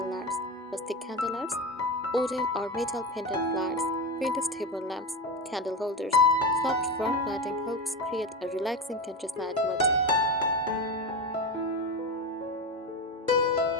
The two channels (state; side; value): normal; both; correlation 0.19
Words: lights, rustic candlelights, wooden or metal pendant lights, vintage table lamps, candle holders. Soft warm lighting helps create a relaxing countryside mood.